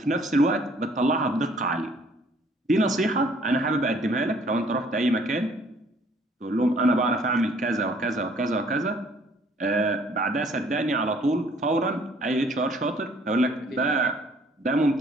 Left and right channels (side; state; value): both; normal; correlation 0.59